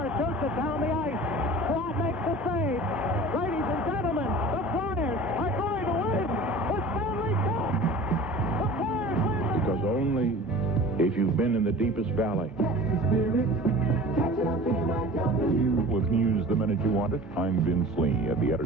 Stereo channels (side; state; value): both; normal; correlation 0.40